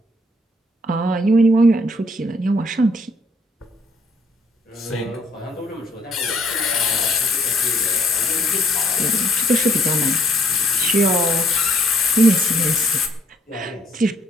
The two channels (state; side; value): normal; both; correlation 0.66